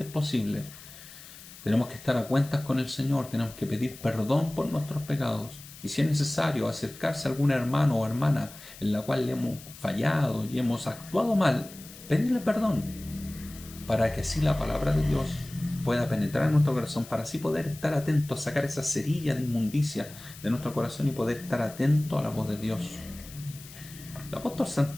posible, tenemos que estar a cuentas con el Señor, tenemos que pedir perdón por nuestros pecados. Y si es necesario acercarse a algún hermano o hermana en la cual le hemos fallado y hemos actuado mal, pedirle perdón, para que así la palabra de Dios pueda penetrar en nuestro corazón, para así poder estar atentos, sacar esa cerilla de inmundicia de nuestro corazón y poder estar atento a la voz de Dios. El apóstol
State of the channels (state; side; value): noise; left; hiss, 17 dB below the sound